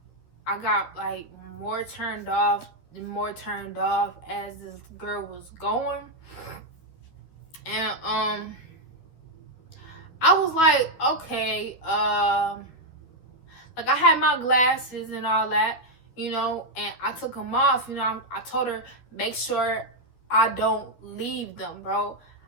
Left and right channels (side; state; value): right; late; 12 ms